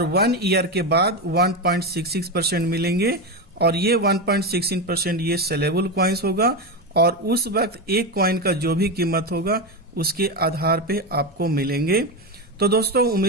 1 ईयर के बाद 1.66% मिलेंगे और ये 1.16% ये सेलेबल कॉइन्स होगा और उस वक्त एक कॉइन का जो भी कीमत होगा उसके आधार पे आपको मिलेंगे। तो दोस्तों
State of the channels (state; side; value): normal; both; correlation 0.15